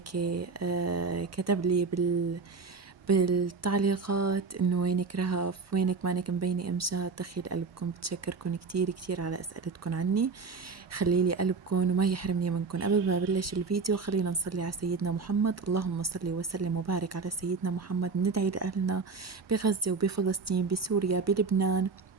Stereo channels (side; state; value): left; quieter; 4.6 dB